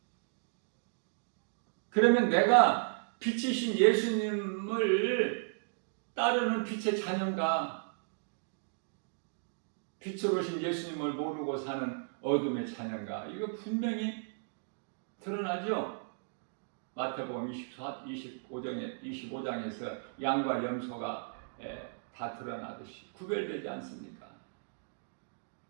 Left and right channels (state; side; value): silent; left; digital silence